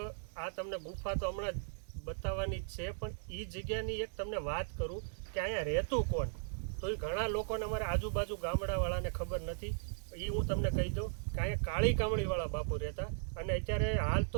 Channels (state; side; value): silent; left; digital silence